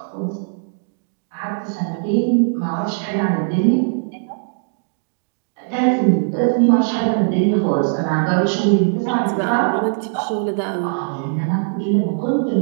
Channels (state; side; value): silent; left; digital silence